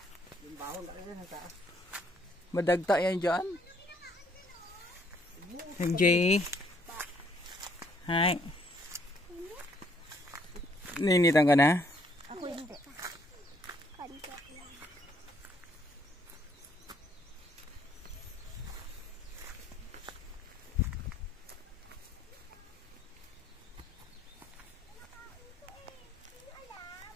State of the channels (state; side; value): normal; both; correlation 0.67